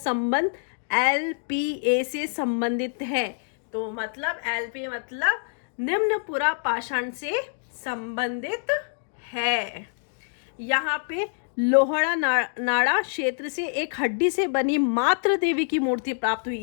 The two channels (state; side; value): silent; right; digital silence